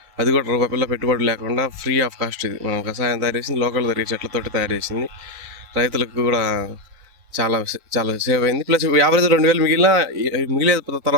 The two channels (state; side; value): late; left; 4.0 ms